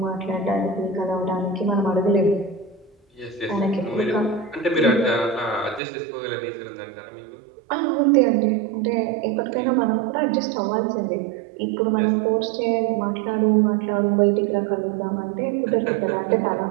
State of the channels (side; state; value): left; drops out; at 5.8 s